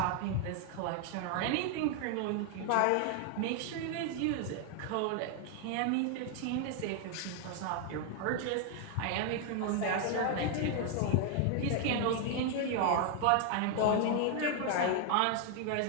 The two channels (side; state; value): both; different; correlation 0.00